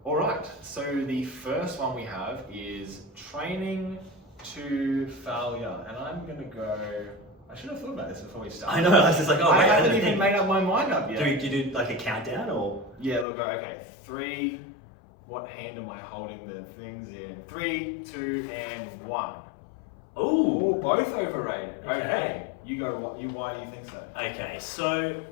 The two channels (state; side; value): drops out; right; at 13.2 s